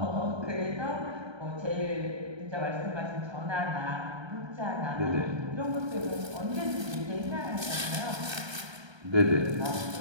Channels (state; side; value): late; left; 1.3 ms